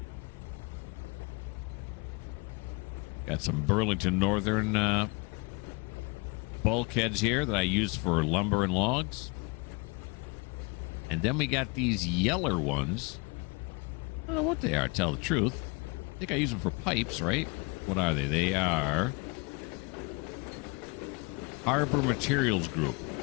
Got some Burlington Northern bulkheads here that I use for lumber and logs. And then we got these yeller ones. I don't know what they are, to tell the truth. I think I use them for pipes, right? What are they? They are Harbor Materials Group.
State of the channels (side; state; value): right; quieter; 29.5 dB